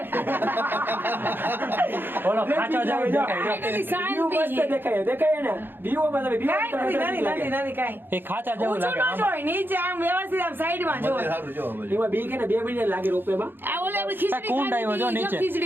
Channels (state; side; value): late; left; 0.098 ms